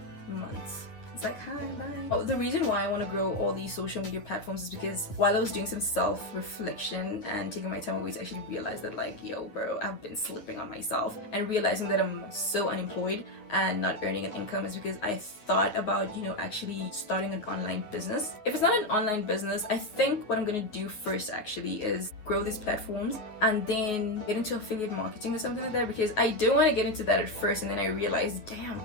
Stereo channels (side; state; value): right; late; 9.5 ms